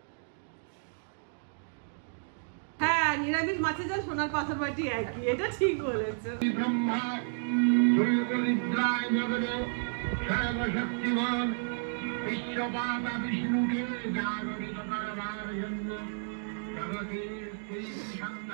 হ্যাঁ, নিরামিষ মাছের জল সোনার পাথর বাটি একই, এটা ঠিক বলেছো।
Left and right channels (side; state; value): left; silent; digital silence